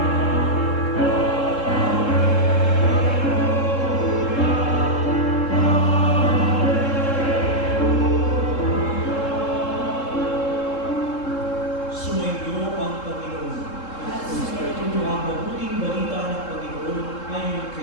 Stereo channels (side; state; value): right; late; 3.7 ms